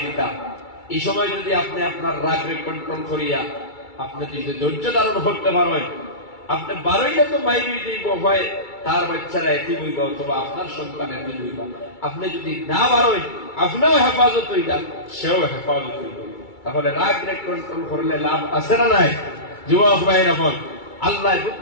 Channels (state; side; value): late; right; 2.3 ms